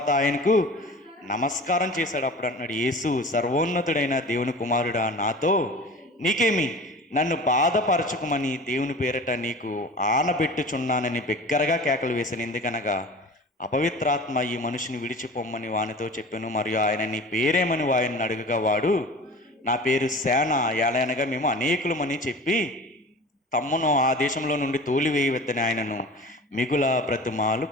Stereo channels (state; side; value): normal; both; correlation 0.39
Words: ఆయనకు నమస్కారం చేశాడు. అప్పుడు అంటున్నాడు, యేసు, సర్వోన్నతుడైన దేవుని కుమారుడా, నాతో నీకేమి? నన్ను బాధపరచుకోమని దేవుని పేరట నీకు ఆనబెట్టుచున్నానని బిగ్గరగా కేకలు వేశాను. ఎందుకనగా అపవిత్రాత్మ ఈ మనిషిని విడిచిపోమ్మని వానితో చెప్పాను. మరియు ఆయన నీ పేరేమని వారిని అడుగగా వాడు, నా పేరు సేన, ఏలనగా మేము అనేకులమని చెప్పి తమ్మును ఆ దేశంలో నుండి తోలివేయవద్దని ఆయనను మిగుల బ్రతిమాలు